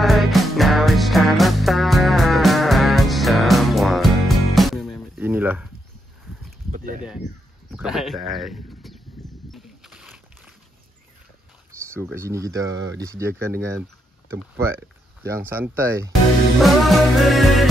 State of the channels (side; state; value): both; normal; correlation 0.80